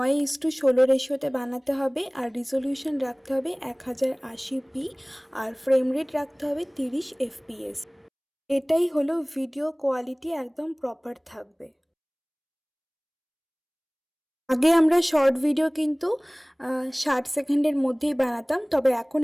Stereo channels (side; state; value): both; identical; correlation 1.00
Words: রেশিওতে বানাতে হবে, আর রিজলিউশন রাখতে হবে 1080p, আর ফ্রেম রেট রাখতে হবে 30 fps। এটাই হলো ভিডিও কোয়ালিটি, একদম প্রপার থাকবে। আগে আমরা শর্ট ভিডিও কিন্তু 60 সেকেন্ডের মধ্যেই বানাতাম, তবে এখন